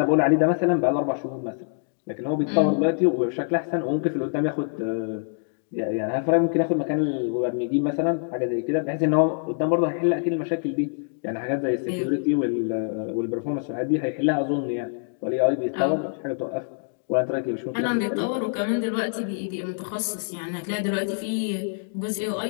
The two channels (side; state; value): right; silent; digital silence